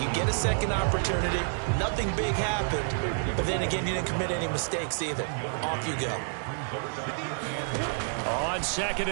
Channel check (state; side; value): silent; left; digital silence